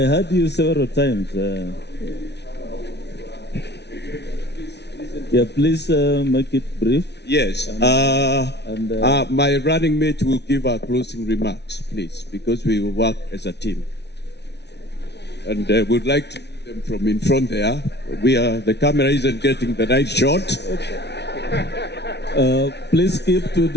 heard you several times. Yeah, please make it brief. Yes. My running mate will give our closing remarks, please, because we will work as a team. And we'd like to do them from in front there. The camera isn't getting the right shot. Please keep to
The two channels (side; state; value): right; late; 0.50 ms